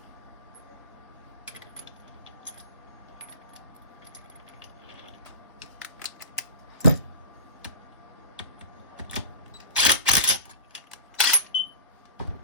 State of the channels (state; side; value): inverted; both; correlation -0.33